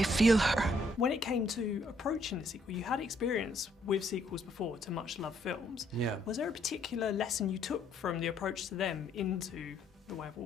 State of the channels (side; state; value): both; normal; correlation 0.69